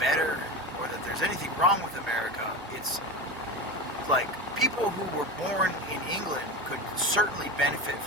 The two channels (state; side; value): normal; both; correlation 0.24